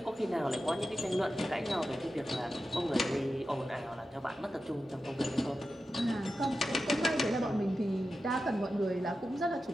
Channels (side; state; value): both; normal; correlation 0.91